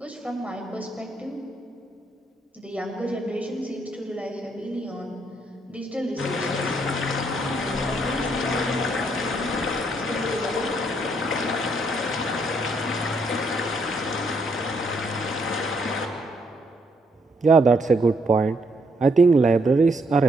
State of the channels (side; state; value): both; normal; correlation 0.73